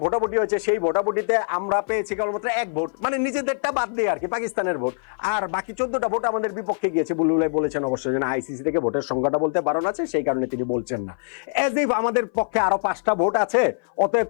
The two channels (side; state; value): right; silent; 58 dB below the other